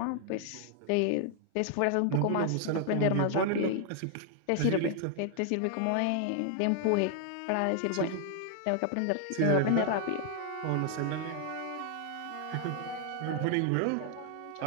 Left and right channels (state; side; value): different; both; correlation 0.00